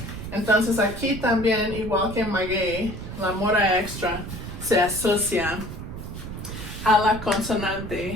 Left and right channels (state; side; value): noise; right; rumble, 9 dB below the sound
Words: Entonces aquí también, igual que en maguey, la mora extra se asocia a la